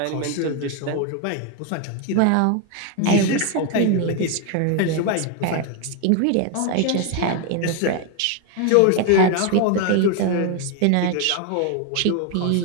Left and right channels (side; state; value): both; different; correlation 0.01